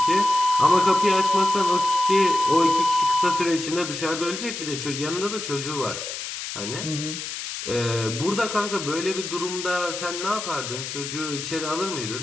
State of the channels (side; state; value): left; noise; hiss, 7 dB below the sound